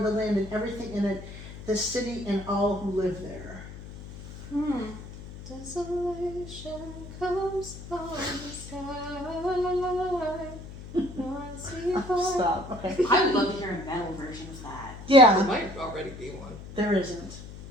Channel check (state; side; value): noise; left; hum, 13 dB below the sound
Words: land and everything in it, the city and all who live there. Desolation comes on the sky. Stop. Okay. I would love to hear a metal version of that. Yeah, There might already be one. there isn't.